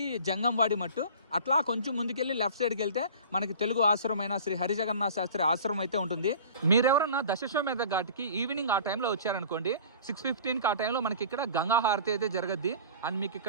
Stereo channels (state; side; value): inverted; both; correlation -0.41